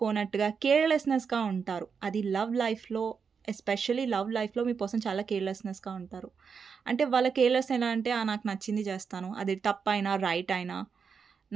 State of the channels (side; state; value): left; quieter; 6.0 dB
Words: కేర్లెస్నెస్గా ఉంటారు. అది లవ్ లైఫ్లో, ఎస్పెషల్లీ లవ్ లైఫ్లో మీ పర్సన్ చాలా కేర్లెస్నెస్గా ఉంటారు. అంటే వాళ్ళ కేర్లెస్ ఎలా అంటే నాకు నచ్చింది చేస్తాను, అది తప్పైనా రైట్ అయినా